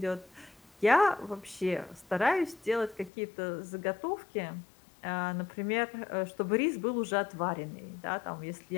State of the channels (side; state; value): right; drops out; at 3.1 s